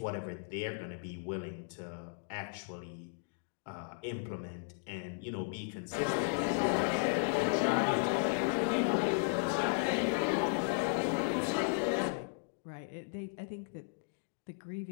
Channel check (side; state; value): right; silent; digital silence